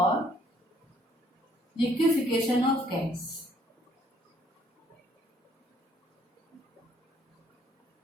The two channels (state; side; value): normal; both; correlation 0.63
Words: लिक्विफिकेशन ऑफ गैस।